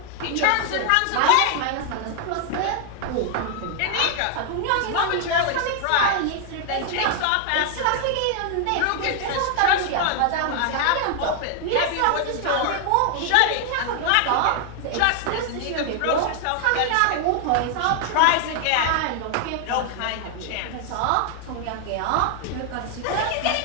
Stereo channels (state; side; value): different; both; correlation 0.00